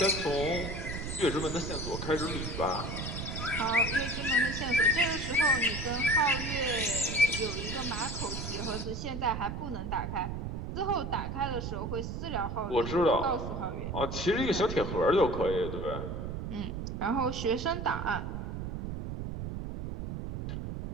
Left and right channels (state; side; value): noise; right; rumble, 5 dB below the sound